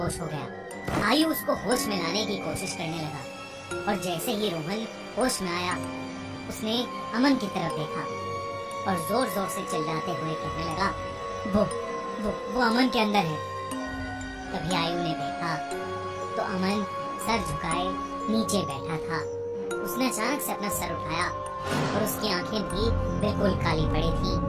हो गया। आयु उसको होश में लाने की कोशिश करने लगा और जैसे ही रोहन होश में आया, उसने अमन की तरफ देखा और जोर जोर से चिल्लाते हुए कहने लगा, वो अमन के अंदर है। तभी आयु ने देखा तो अमन सर झुकाए नीचे बैठा था। उसने अचानक से अपना सर उठाया और उसकी आंखें भी बिल्कुल काली पड़ी थी।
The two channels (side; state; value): both; identical; correlation 1.00